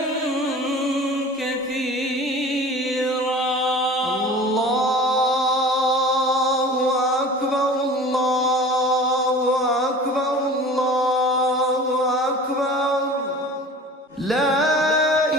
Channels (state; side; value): normal; both; correlation 0.41